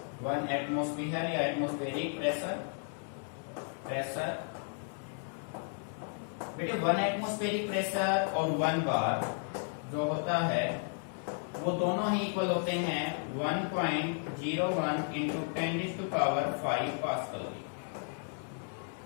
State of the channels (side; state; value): right; silent; 55 dB below the other